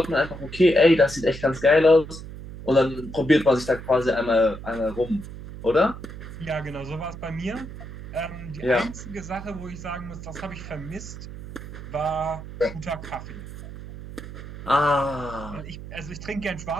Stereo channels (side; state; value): right; noise; hum, 12 dB below the sound